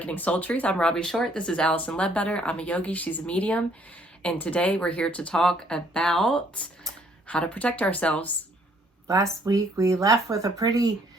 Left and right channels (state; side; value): normal; both; correlation 0.64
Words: Soul Truth. I'm Robbie Short. This is Allison Ledbetter. I'm a yogi. She's a medium. And today we're here to talk about how to protect ourselves. Last week we left with a pretty